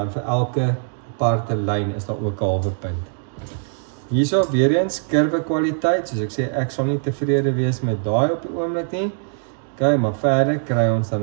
vir elke aparte lyn is daar ook 'n halwe punt. Hierso weer eens kurwe kwaliteit, soos ek sê, ek sal nie tevrede wees met daai op die oomblik nie. Okay, maar verder kry ons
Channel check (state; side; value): silent; left; digital silence